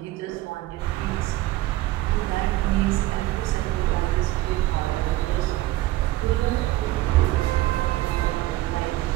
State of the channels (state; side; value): quieter; left; 16.9 dB